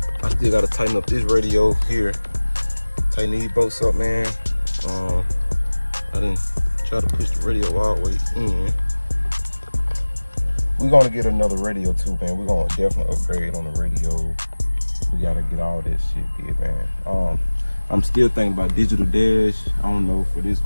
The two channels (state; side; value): inverted; both; correlation -1.00